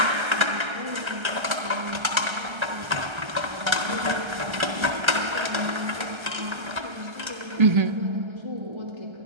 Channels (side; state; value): left; late; 1.3 ms